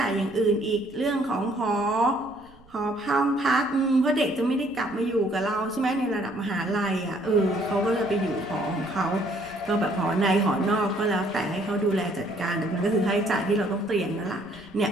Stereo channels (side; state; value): right; noise; rumble, 26 dB below the sound